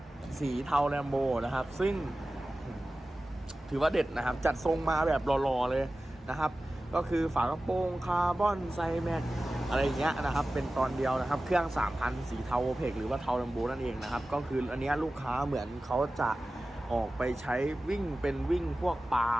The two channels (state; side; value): normal; both; correlation 0.96